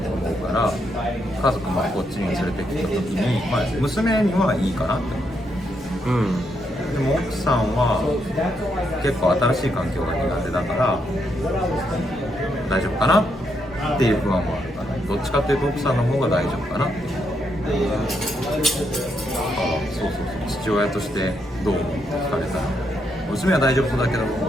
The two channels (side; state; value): both; normal; correlation 0.78